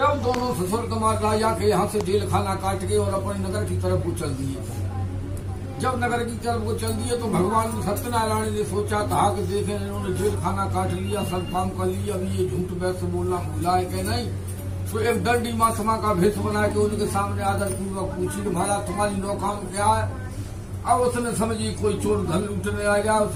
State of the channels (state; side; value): identical; both; correlation 1.00